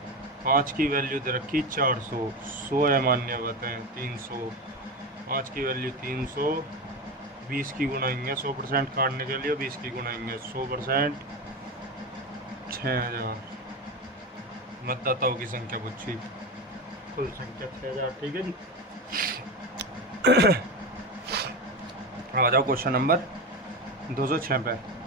5 की वैल्यू दे रखी 400। 100 अमान्य बताएं 300। 5 की वैल्यू 300। 20 की गुनाएंगे 100% काटने के लिए 20 की गुनाएंगे 100% 6000। मतदाताओं की संख्या पूछी, कुल संख्या 6000। ठीक है जी। आ जाओ क्वेश्चन नंबर 206 पे।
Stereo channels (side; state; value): both; normal; correlation 0.20